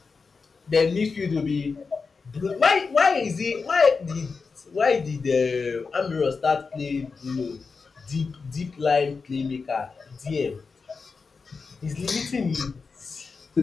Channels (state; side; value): quieter; right; 4.8 dB